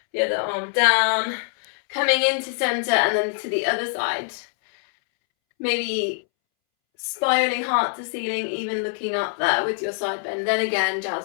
the other arm down. Coming into center and then to the other side. Maybe spiraling heart to ceiling, even looking up there with your side bend. Then again,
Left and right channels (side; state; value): right; silent; 63 dB below the other